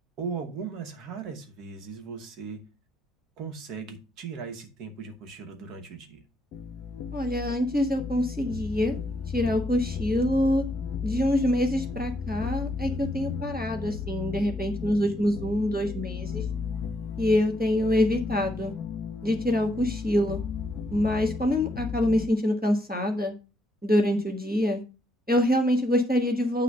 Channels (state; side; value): normal; both; correlation 0.75